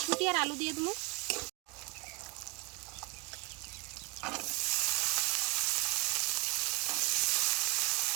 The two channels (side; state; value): left; quieter; 27.7 dB